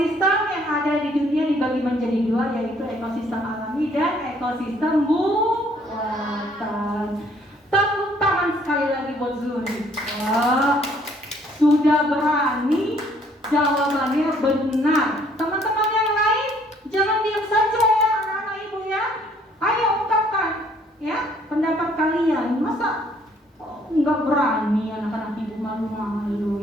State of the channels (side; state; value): both; normal; correlation 0.62